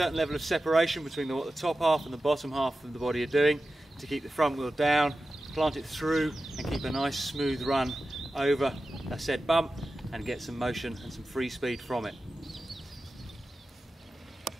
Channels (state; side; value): normal; both; correlation 0.93